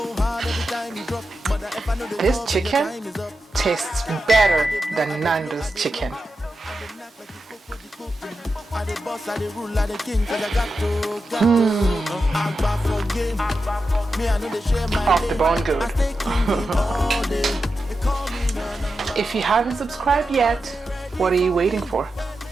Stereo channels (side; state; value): both; normal; correlation 0.90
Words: This chicken tastes better than Nando's chicken. Off the bone good. If you haven't subscribed yet, what are you waiting for?